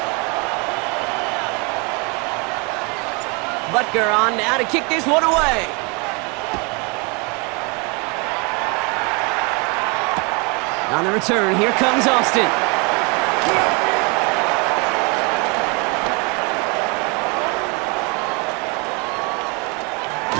Butker on now to kick this one away. On the return, here comes Austin.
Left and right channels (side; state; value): left; quieter; 31.3 dB